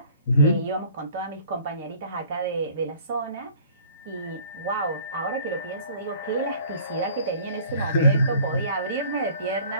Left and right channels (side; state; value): both; inverted; correlation -0.51